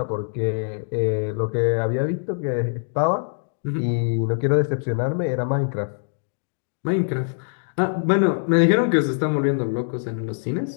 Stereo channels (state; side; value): silent; right; digital silence